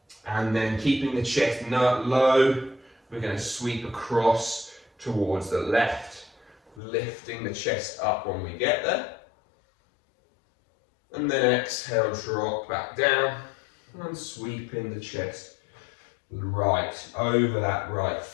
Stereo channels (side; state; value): right; drops out; at 6.8 s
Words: and then keeping the chest low, we're going to sweep across towards the left, lifting the chest up when we get there. And then exhale, drop back down and sweeping the chest right over that right